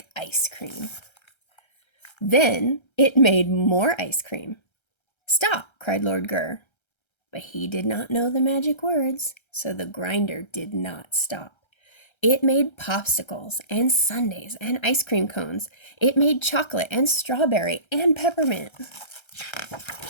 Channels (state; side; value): late; right; 1.3 ms